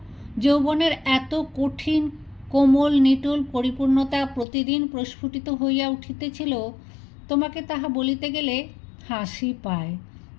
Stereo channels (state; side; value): drops out; right; at 4.5 s